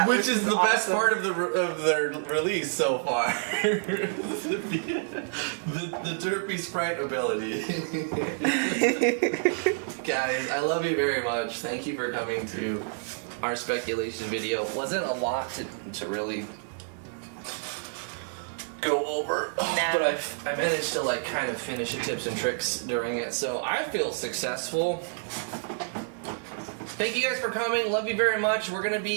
Which is the best part of their release so far. the derpy sprite ability. Guys, I love you very much. Thank you for coming to our speculation video. Wasn't a lot to really go over, but I managed to like kind of finish the tips and tricks during it, so I feel successful. Thank you guys for coming. Love you very much. We're gonna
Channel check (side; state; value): left; silent; 59 dB below the other